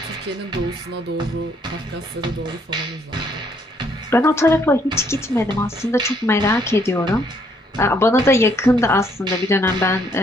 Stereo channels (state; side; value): normal; both; correlation 0.68